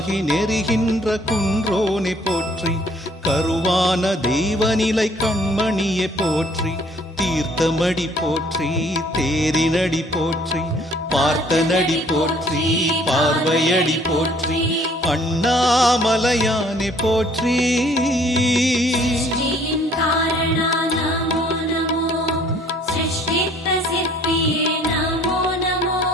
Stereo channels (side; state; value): both; normal; correlation 0.59